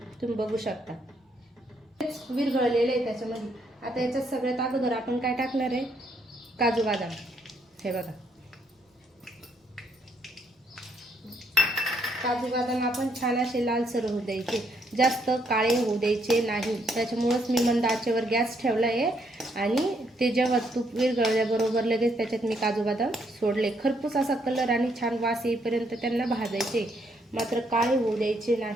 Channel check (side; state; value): both; normal; correlation 0.73